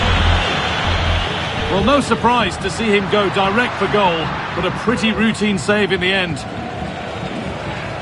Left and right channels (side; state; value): both; identical; correlation 1.00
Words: Well, no surprise to see him go direct for goal. but a pretty routine save in the end.